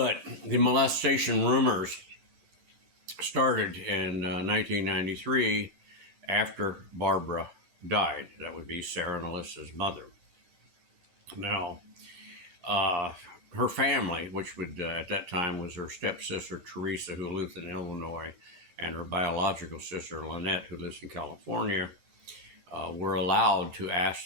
the molestation rumors started in 1993 after Barbara died. That would be Sarah and Alyssa's mother. Now, uh, her family, which would at that time was her stepsister Teresa, who lives in Illinois, and her biological sister Lynette, who lives in California, were allowed to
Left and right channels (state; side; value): late; left; 10 ms